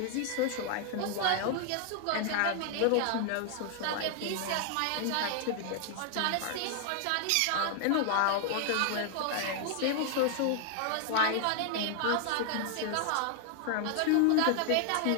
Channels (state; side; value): different; both; correlation 0.00